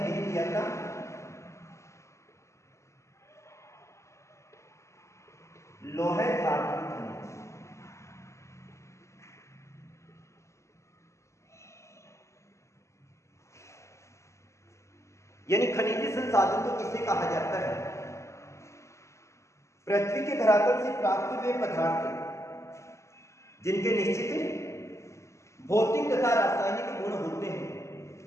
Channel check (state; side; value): late; right; 0.14 ms